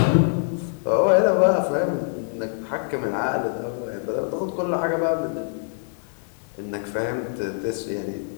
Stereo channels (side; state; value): right; silent; 62 dB below the other